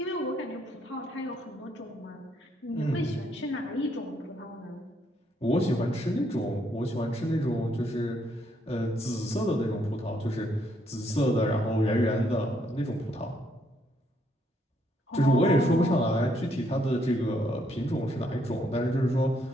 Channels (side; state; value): both; normal; correlation 0.72